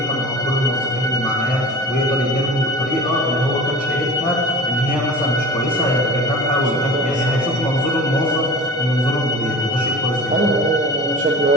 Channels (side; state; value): both; normal; correlation 0.36